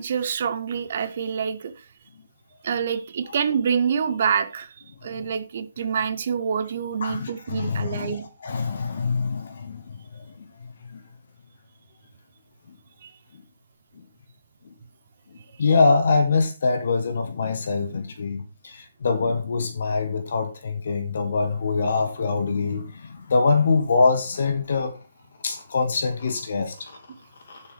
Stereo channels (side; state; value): both; inverted; correlation -0.78